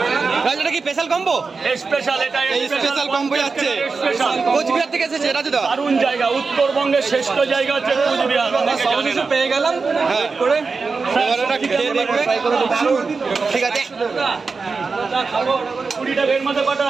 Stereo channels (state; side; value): quieter; left; 4.5 dB